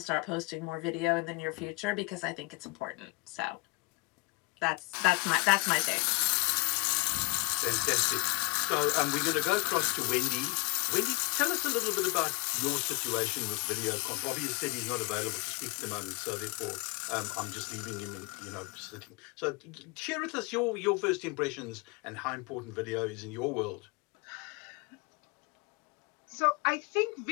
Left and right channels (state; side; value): quieter; right; 26.5 dB